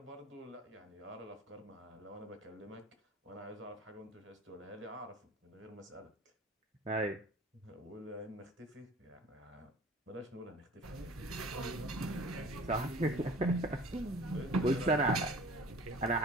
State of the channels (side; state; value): both; normal; correlation 0.45